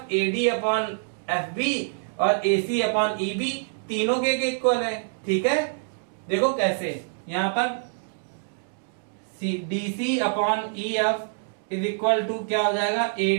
AD upon FB और AC अपॉन EB तीनों के इक्वल है, ठीक है। देखो कैसे, यहाँ पर DC upon EF is equal to क्या हो जाएगा,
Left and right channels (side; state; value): left; silent; digital silence